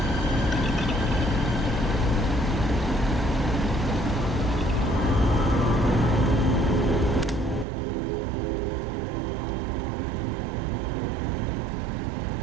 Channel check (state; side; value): drops out; left; at 7.7 s